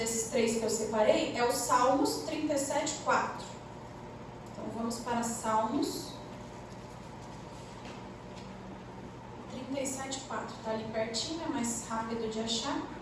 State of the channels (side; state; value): both; identical; correlation 1.00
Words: 3 que eu separei é o Salmos 37:4. Então vamos para Salmos 37:4. Está ali pertinho, é mais rápido de achar.